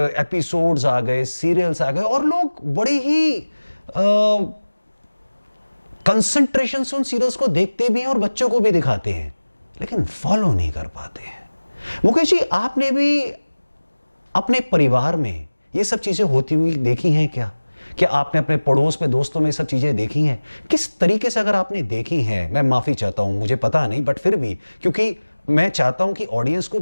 एपिसोड्स आ गए, सीरियल्स आ गए और लोग बड़े ही कंसंट्रेशन से उन सीरियल्स को देखते भी हैं और बच्चों को भी दिखाते हैं, लेकिन फॉलो नहीं कर पाते हैं। मुकेश जी, आपने भी अपने परिवार में ये सब चीजें होती हुई देखी हैं क्या? क्या आपने अपने पड़ोस में, दोस्तों में सब चीजें देखी हैं? किस तरीके से अगर आपने देखी हैं, मैं माफी चाहता हूं, मुझे पता नहीं, बट फिर भी, क्योंकि मैं चाहता हूं कि ऑडियंस को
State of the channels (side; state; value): both; inverted; correlation -1.00